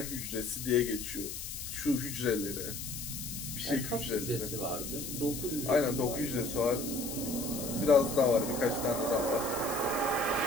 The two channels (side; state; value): left; noise; hiss, 7 dB below the sound